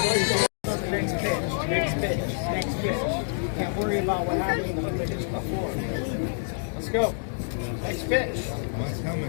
Can't worry about what happens when they hit you before. Let's go. Next pitch. One's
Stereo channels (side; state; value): right; silent; digital silence